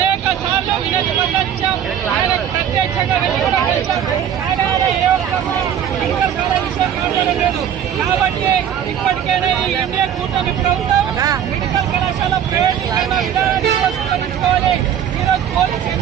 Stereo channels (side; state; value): left; quieter; 9.4 dB